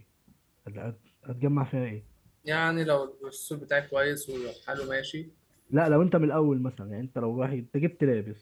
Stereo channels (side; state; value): both; identical; correlation 1.00